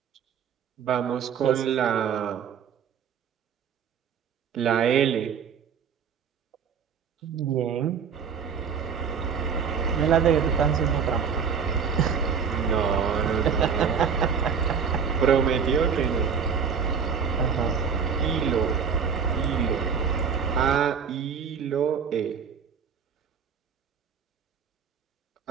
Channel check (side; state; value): left; quieter; 6.7 dB